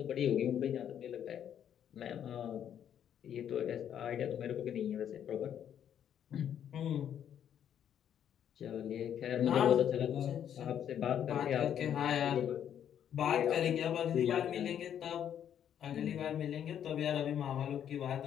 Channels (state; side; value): quieter; right; 9.5 dB